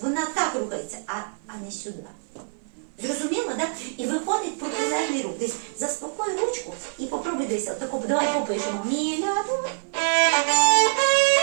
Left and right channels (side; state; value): left; silent; 59 dB below the other